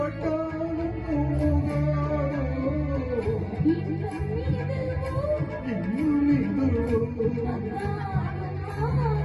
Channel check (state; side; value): identical; both; correlation 1.00